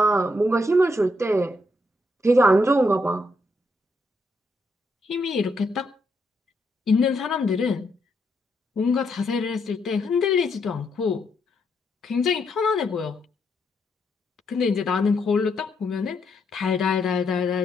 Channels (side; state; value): both; normal; correlation 0.77